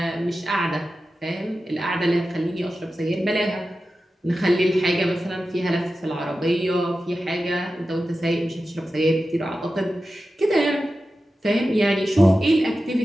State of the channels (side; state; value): both; normal; correlation 0.93